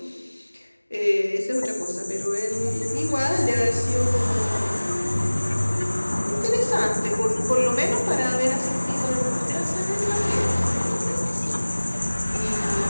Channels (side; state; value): both; inverted; correlation -1.00